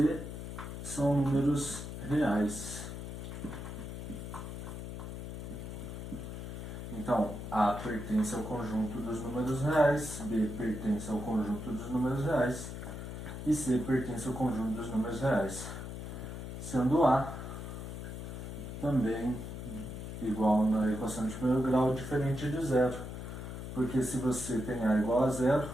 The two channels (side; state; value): left; noise; hum, 7 dB below the sound